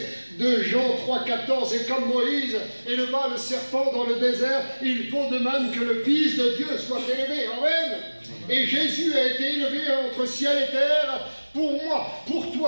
de Jean 3,14, et comme Moïse éleva le serpent dans le désert, il faut de même que le Fils de Dieu soit élevé. Amen. Et Jésus a été élevé entre ciel et terre pour moi, pour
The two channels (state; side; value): inverted; both; correlation -1.00